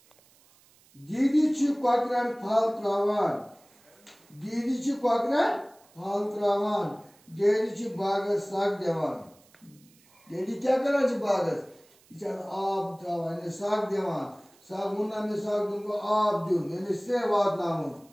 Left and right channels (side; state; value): right; noise; hiss, 30 dB below the sound